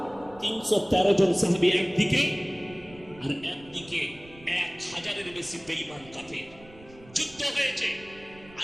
313 জন সাহাবী একদিকে, আর একদিকে 1000-এর বেশি বেঈমান কাফের। যুদ্ধ হয়েছে।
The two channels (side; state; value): right; noise; rumble, 22 dB below the sound